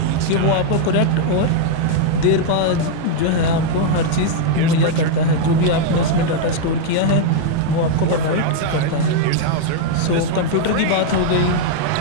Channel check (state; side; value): different; both; correlation 0.00